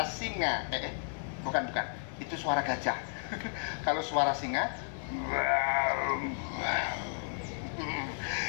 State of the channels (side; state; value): right; silent; digital silence